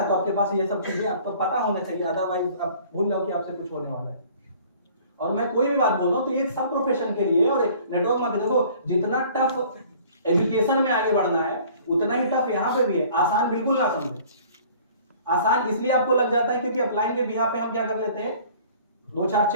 तो आपके पास ये सब चीजें आपको पता होना चाहिए, अदरवाइज आप भूल जाओ कि आपसे कुछ होने वाला है। और मैं कोई भी बात बोल रहा हूँ तो ये सब प्रोफेशन के लिए। और नेटवर्क मार्केटिंग देखो, जितना टफ एजुकेशन में आगे बढ़ना है उतना ही टफ यहाँ पे भी है। आसान बिल्कुल ना समझे, आसान इसलिए आपको लग जाता है क्योंकि अपलाइन के बिहाफ पे हम क्या कर लेते हैं, 2-4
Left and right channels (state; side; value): inverted; both; correlation -0.52